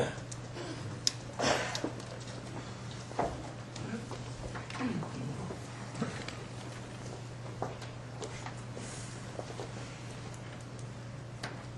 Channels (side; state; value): both; identical; correlation 1.00